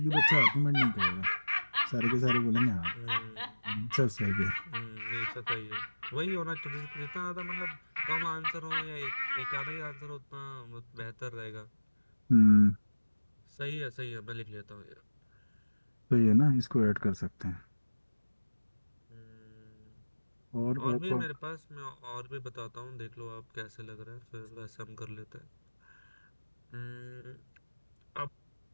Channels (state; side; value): inverted; both; correlation -1.00